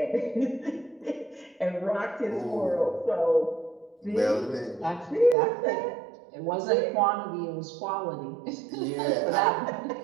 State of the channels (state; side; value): drops out; left; at 5.4 s